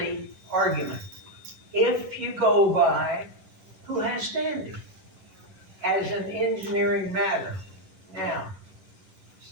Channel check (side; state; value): left; late; 10 ms